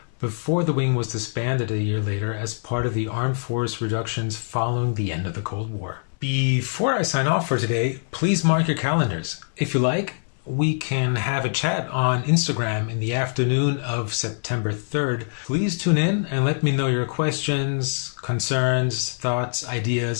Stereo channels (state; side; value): silent; right; 63 dB below the other